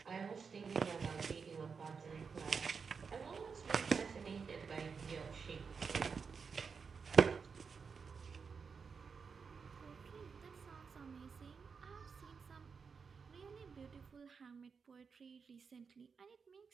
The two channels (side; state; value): left; quieter; 5.6 dB